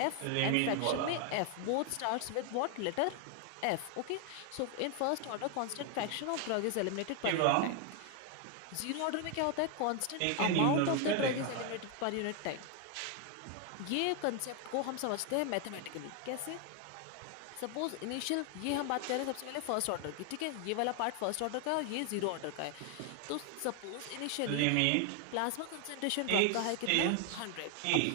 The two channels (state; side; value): different; both; correlation 0.00